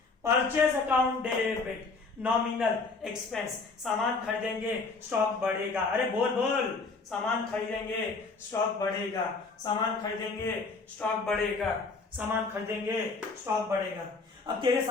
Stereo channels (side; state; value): right; quieter; 4.1 dB